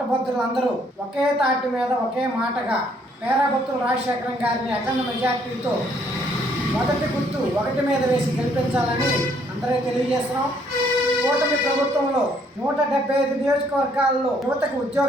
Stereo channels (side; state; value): both; normal; correlation 0.66